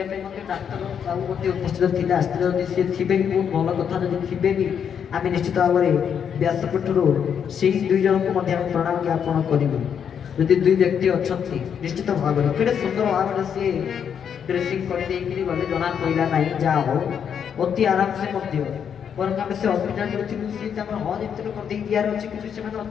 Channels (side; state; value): right; quieter; 7.8 dB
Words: ପାଇଁ ମଧ୍ୟ ଡାକ୍ତର ବାବୁ ମଧ୍ୟ ଉପସ୍ଥିତ ଥିଲେ, ଆସିଥିଲେ। ଯଦି ସିଏ ଥିବେ ବି ବହୁତ ଭଲ କଥା, ଯଦି ଥିବେ ବି ଆମେ ନିଶ୍ଚିତ ଭାବରେ ବ୍ୟାସପୀଠରୁ ସେଇ ଦୁଇ ଜଣଙ୍କୁ ମଧ୍ୟ ଆମେ ପ୍ରଣାମ ଜ୍ଞାପନ କରିବୁ। ଯଦି ଦୁଇ ବ୍ୟକ୍ତି ଅଛନ୍ତି ନିଶ୍ଚିତ ଭାବରେ କେଡ଼େ ସୁନ୍ଦର ଭାବରେ ସିଏ ଡ୍ରେସିଂ କରିଦେଇକିରି ଗଲେ, ଜଣା ପଡ଼ିଲା ନାହିଁ। ଯାହା ହଉ ଅତି ଆରାମସେ ମଧ୍ୟ, ବରଂ ଆମେ ସେ ହସ୍ପିଟାଲରେ ଥିଲୁ, ସେ ତାଙ୍କର ହଜ୍ ଏମିତି କରିଦେଇ ଦିଆର ଅଛି, କିନ୍ତୁ ସେମାନେ